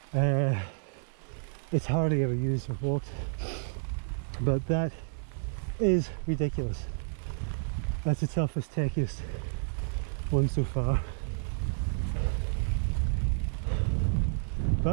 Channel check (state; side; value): silent; left; digital silence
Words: It's hardly ever used or walked, but that is ridiculous. That's the toughest, techiest one so far.